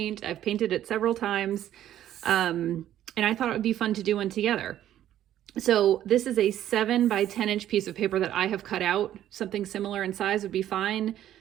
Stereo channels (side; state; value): left; quieter; 11.9 dB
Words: I've painted it several times. And I thought it would be fun to do one together. So this is a 7 by 10 inch piece of paper that I have cut out. Something similar in size would be fine.